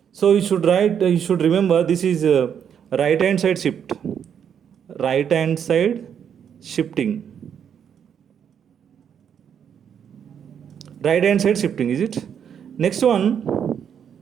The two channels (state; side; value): quieter; left; 8.2 dB